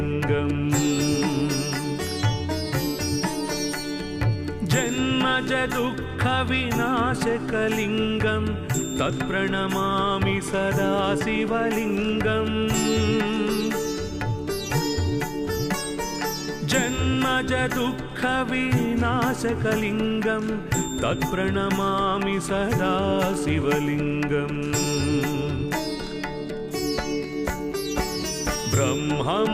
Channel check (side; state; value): both; identical; correlation 1.00